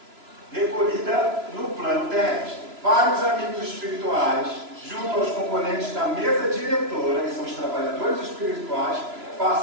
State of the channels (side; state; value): left; late; 3.0 ms